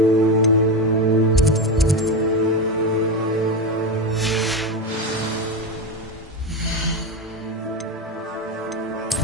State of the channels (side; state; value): both; normal; correlation 0.16